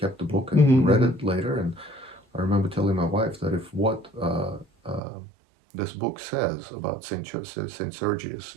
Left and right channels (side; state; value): left; drops out; at 5.0 s